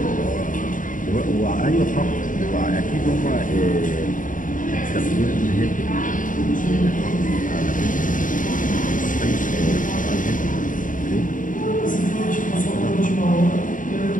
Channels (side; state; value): right; late; 0.38 ms